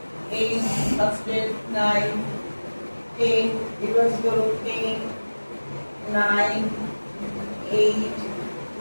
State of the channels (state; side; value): inverted; both; correlation -1.00